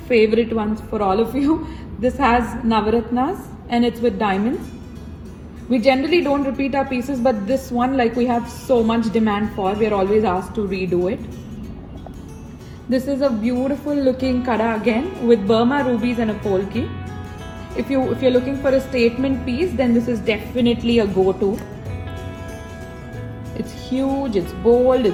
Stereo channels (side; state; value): both; identical; correlation 1.00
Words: favorite ones for all of you. This has navaratnas and it's with diamonds. We generally don't repeat our pieces, but this one, like, we have so much demand for, we are always asked to redo it. This is a beautiful looking kara again with Burma rubies and a polki. If you're looking for a statement piece, then this is definitely a go-to. It's huge, it's bold,